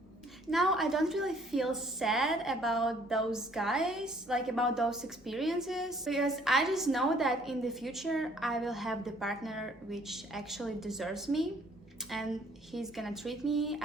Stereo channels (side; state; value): both; normal; correlation 0.60